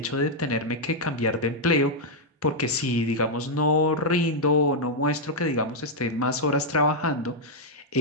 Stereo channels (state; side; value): normal; both; correlation -0.03